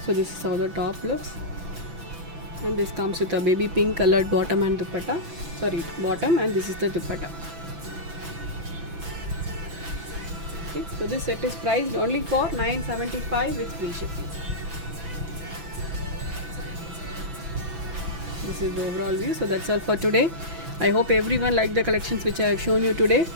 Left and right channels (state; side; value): late; left; 6.0 ms